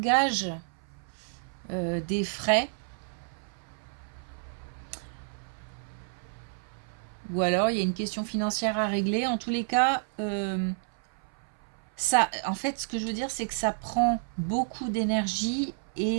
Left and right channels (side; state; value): left; silent; 58 dB below the other